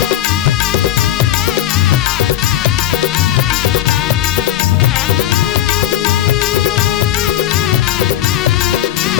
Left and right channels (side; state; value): right; quieter; 12.5 dB